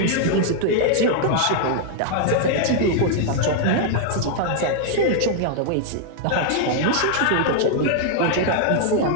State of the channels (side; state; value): both; different; correlation 0.00